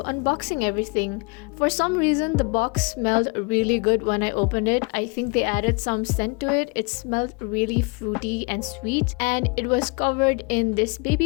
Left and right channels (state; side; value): quieter; right; 31.7 dB